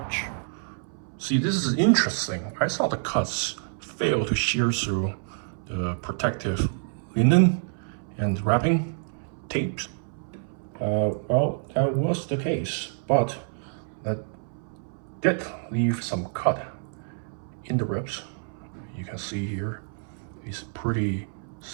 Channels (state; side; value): silent; left; 60 dB below the other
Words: See, this is interesting. I saw the cuts fail to shear through the protective linen and wrapping tapes. Well, that was the case, but that did leave some cut in the ribs. You can see here, these pretty